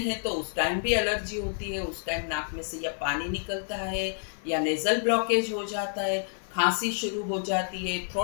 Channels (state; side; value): silent; right; digital silence